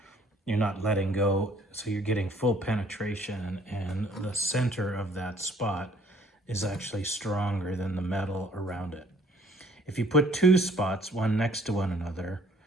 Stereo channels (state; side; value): normal; both; correlation 0.59